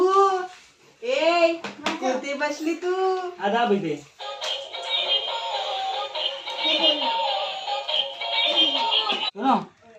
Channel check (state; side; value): identical; both; correlation 1.00